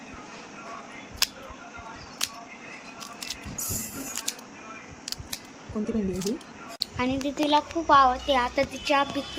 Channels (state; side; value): identical; both; correlation 1.00